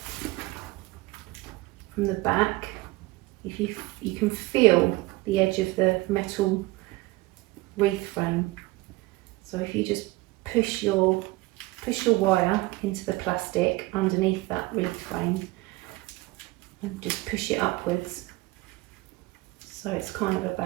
From the back, if you can feel the edge of the metal wreath frame. So if you just push your wire into the plastic underneath that wreath frame and just push it upwards, so it's kind of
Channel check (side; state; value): left; quieter; 20.5 dB